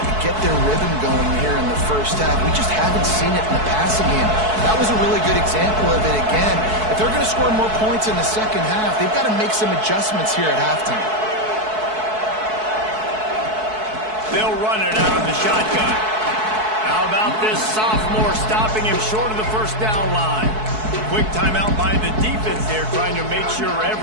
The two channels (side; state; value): left; late; 4.6 ms